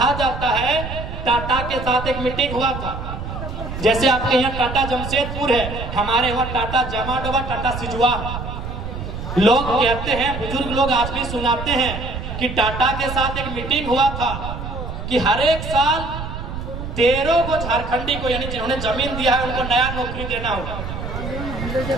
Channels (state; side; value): noise; right; rumble, 7 dB below the sound